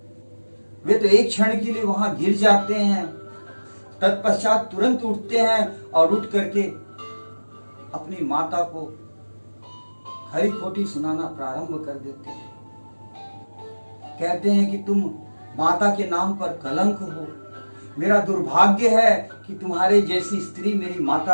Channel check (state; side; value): inverted; both; correlation -1.00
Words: वे तो एक क्षण के लिए वहां गिर जाते हैं। तत्पश्चात तुरंत उठते हैं और उठ करके अपनी माता को खरी खोटी सुनाना प्रारंभ कर देते हैं। कहते हैं कि तुम माता के नाम पर कलंक हो, मेरा दुर्भाग्य है कि तुम्हारे जैसी स्त्री मेरी